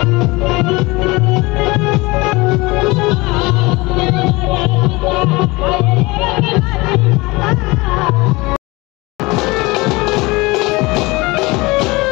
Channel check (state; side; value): quieter; right; 23.4 dB